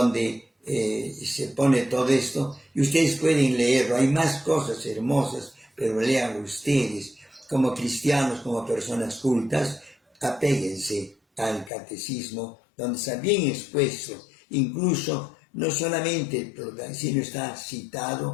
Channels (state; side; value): drops out; right; at 11.7 s